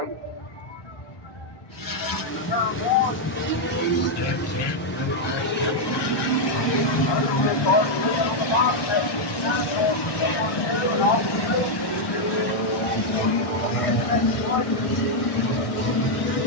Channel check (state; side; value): late; right; 1.1 ms